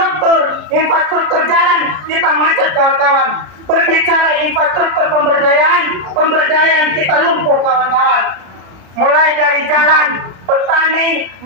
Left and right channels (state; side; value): late; left; 33 ms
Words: infrastruktur jalan, kita macet, kawan-kawan. Berbicara infrastruktur pemberdayaan kita lumpuh, kawan-kawan. Mulai dari jalan, petani,